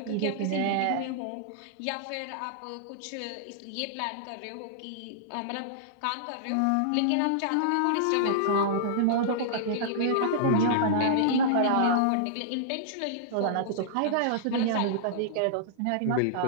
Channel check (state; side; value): different; both; correlation -0.02